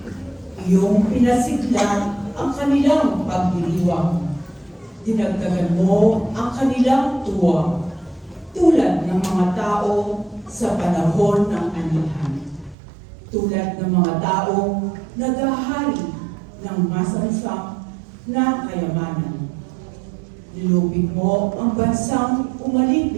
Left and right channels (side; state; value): left; drops out; at 12.8 s